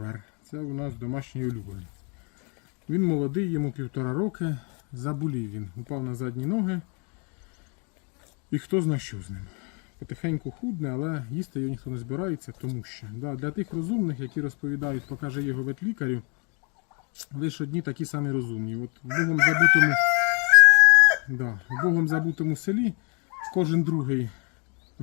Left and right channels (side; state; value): right; quieter; 35.2 dB